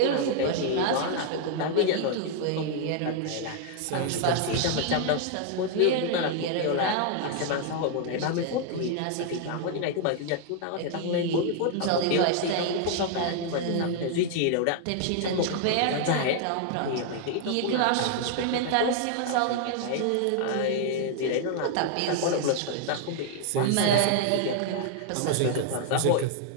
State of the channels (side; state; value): both; different; correlation 0.00